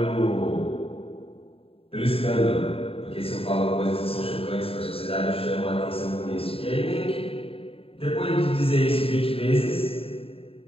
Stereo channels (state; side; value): late; right; 0.27 ms